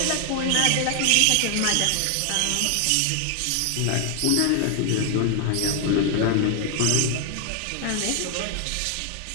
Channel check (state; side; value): different; both; correlation 0.00